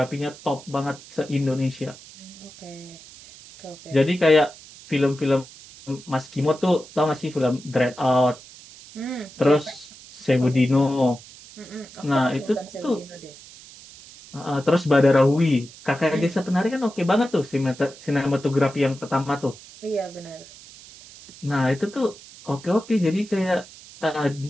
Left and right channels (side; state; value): right; noise; hiss, 19 dB below the sound